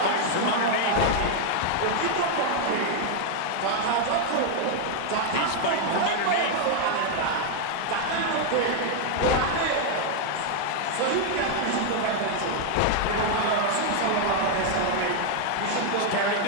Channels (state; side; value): different; both; correlation 0.00